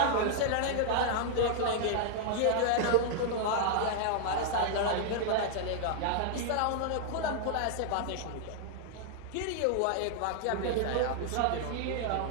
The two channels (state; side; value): different; both; correlation -0.01